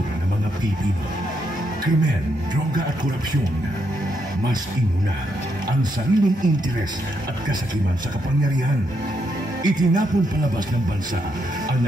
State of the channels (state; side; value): normal; both; correlation 0.78